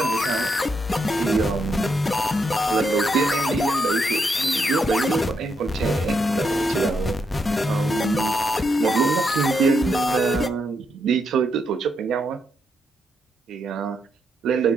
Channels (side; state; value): both; normal; correlation 0.80